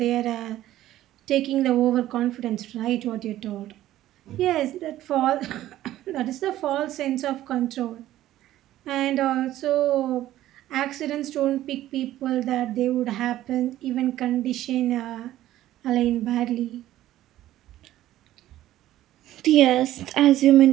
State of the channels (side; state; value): left; quieter; 14.0 dB